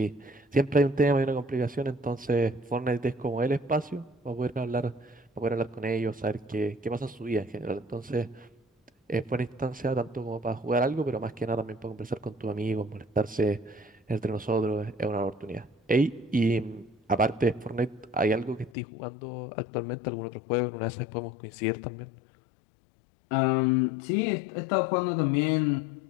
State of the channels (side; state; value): right; drops out; at 18.7 s